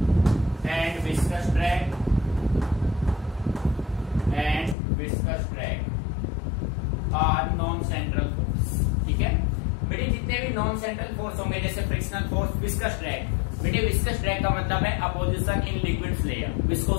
and viscous drag are non central force। ठीक है बेटे, जितने भी नॉन सेंट्रल फोर्स होंगे जैसे फ्रिक्शनल फोर्स, विस्कस ड्रैग। बेटे विस्कस ड्रैग का मतलब है opposition in liquids layer,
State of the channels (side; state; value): right; drops out; at 4.8 s